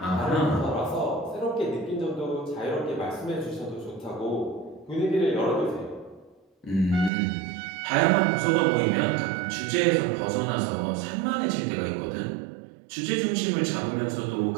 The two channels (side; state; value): left; drops out; at 7.1 s